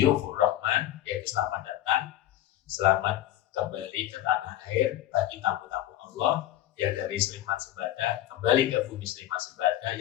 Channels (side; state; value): right; quieter; 13.3 dB